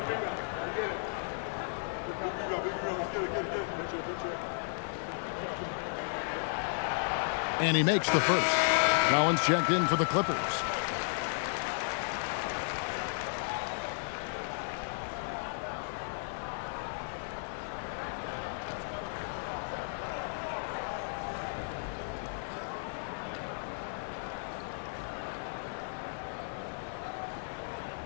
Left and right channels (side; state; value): right; silent; 55 dB below the other